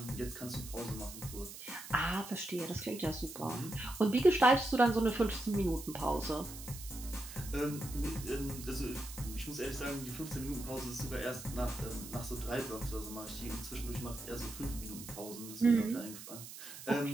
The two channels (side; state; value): right; noise; hiss, 12 dB below the sound